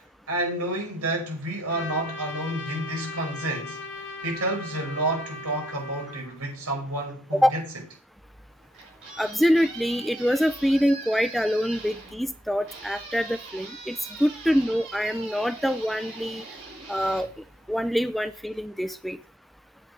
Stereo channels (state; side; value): normal; both; correlation 0.76